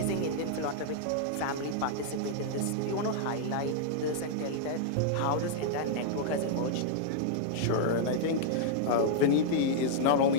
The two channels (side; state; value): both; different; correlation -0.01